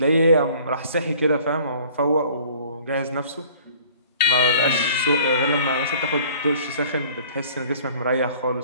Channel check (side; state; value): both; inverted; correlation -0.51